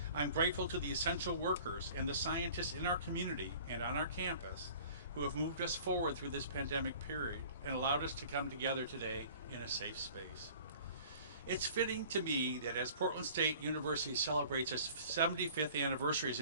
I'm grateful to the essential workers and the scientists in our community and on our campus who have moved us forward through this pandemic period and allowed us to come together today in a safe space. It's fitting to me that as Portland State University celebrates its 75th anniversary as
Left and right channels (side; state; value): both; inverted; correlation -0.48